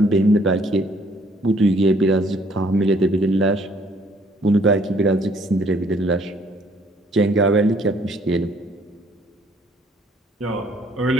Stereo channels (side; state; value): both; normal; correlation 0.62